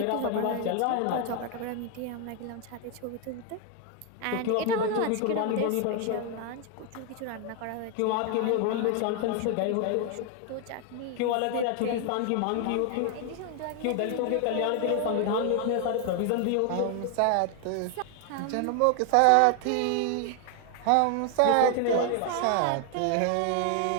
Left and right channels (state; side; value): different; both; correlation 0.00